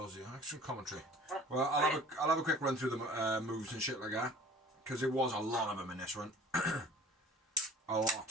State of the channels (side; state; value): both; normal; correlation 0.46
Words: Excellent commentary. Well, I'll have a quick run through the moves and shit like that, because it was a lot of them in this one. A